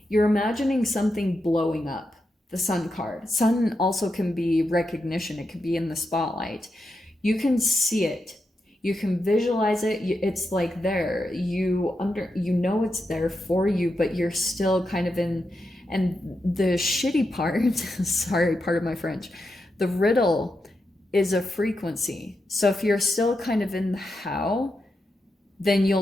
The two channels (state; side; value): normal; both; correlation 0.86